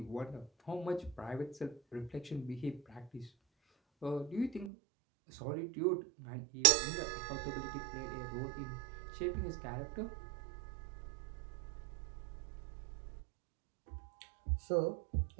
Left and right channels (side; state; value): left; drops out; at 4.7 s